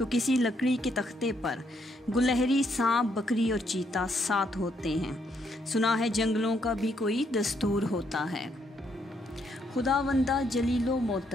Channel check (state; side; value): normal; both; correlation 0.74